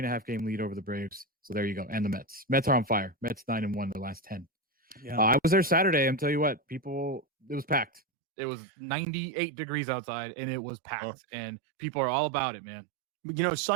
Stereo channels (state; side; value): drops out; left; at 8.0 s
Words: lead over the Braves. So there you go. And the Mets. Mets are on fire. Mets 9-1 the last 10. Yeah. I was there Saturday. I'm telling you what, it was packed. It was 98 degrees outside, and it was packed. And people are all about it, man. You know,